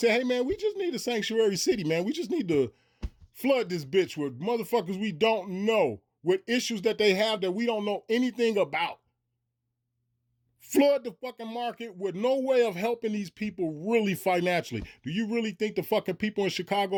hey man, we just need a sanctuary city, man. We just need to flood this bitch with motherfuckers we don't know, with issues that they have that we don't know anything about. Flood the fucking market with no way of helping these people really financially. Do you really think the fucking people in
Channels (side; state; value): both; identical; correlation 1.00